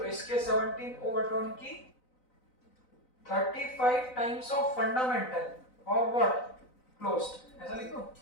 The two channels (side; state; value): right; late; 4.0 ms